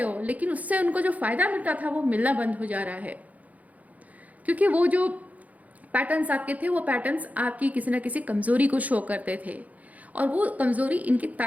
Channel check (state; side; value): late; left; 0.075 ms